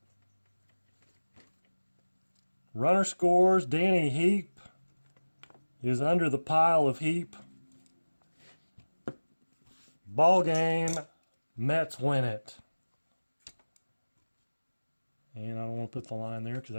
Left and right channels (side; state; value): both; inverted; correlation -1.00